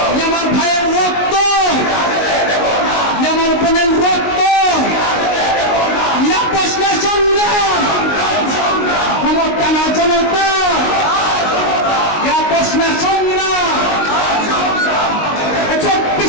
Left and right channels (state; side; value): late; right; 19 ms